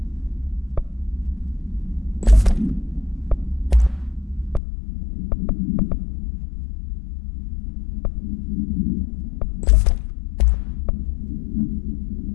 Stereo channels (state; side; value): drops out; right; at 4.6 s